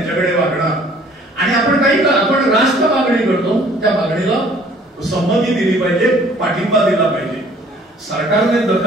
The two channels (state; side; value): normal; both; correlation 0.56